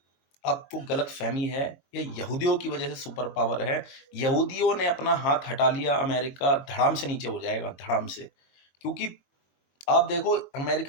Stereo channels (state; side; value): late; right; 21 ms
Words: आपको गलतफ़हमी है, ये यहूदियों की वजह से सुपर पावर है। यहूदियों ने अपना हाथ हटा लिया, अमेरिका धड़ाम से नीचे हो जाएगा, धड़ाम से। क्योंकि आप देखो